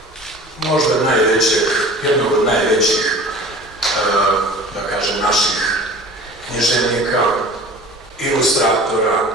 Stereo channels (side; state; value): both; normal; correlation 0.42